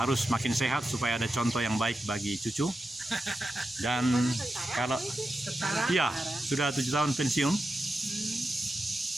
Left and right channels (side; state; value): both; normal; correlation 0.89